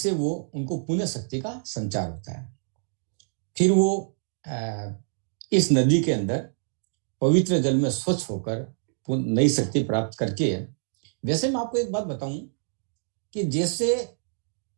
वो उनको पुण्य शक्ति का संचार होता है। फिर वो इस नदी के अंदर पवित्र जल में स्वच्छ होकर नई शक्ति प्राप्त करके, वैसे मैं आपको एक बात बताऊं कि जैसे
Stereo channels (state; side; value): silent; left; digital silence